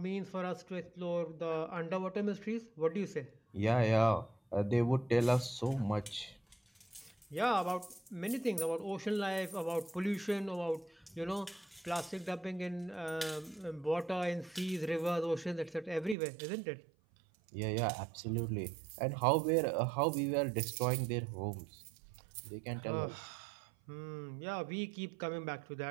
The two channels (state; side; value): drops out; left; at 16.2 s